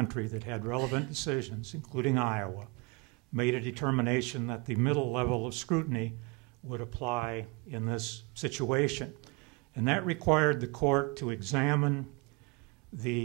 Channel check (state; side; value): quieter; left; 27.1 dB